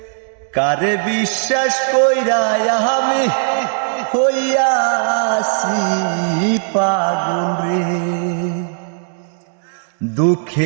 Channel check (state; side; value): silent; left; 63 dB below the other